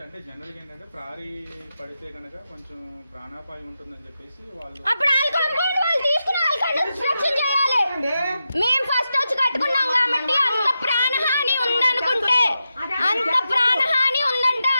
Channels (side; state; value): both; inverted; correlation -0.89